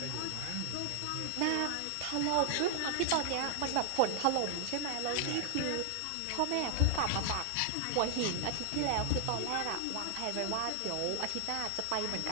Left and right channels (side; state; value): both; different; correlation 0.00